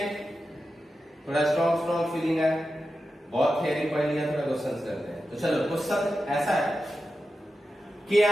थोड़ा स्ट्रॉन्ग फीलिंग है, बहुत थ्योरी पढ़ लिया, थोड़ा क्वेश्चन करते हैं। तो चलो क्वेश्चन ऐसा है कि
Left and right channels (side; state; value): both; normal; correlation 0.91